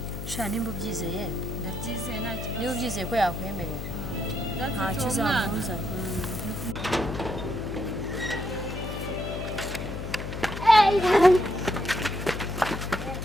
sha nimba ubyizeye ndabyizeye nta kibazo niba ubyizeye ko yakwemerera ntacyo uzamuzana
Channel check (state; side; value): noise; left; hum, 6 dB below the sound